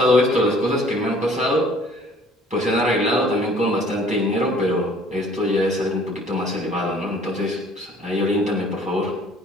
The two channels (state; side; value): normal; both; correlation 0.55